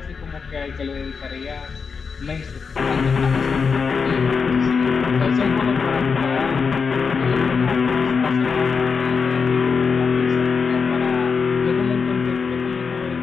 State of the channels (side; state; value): right; quieter; 5.4 dB